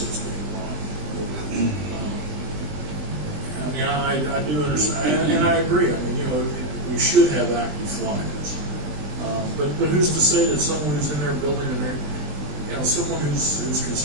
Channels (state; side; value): late; left; 20 ms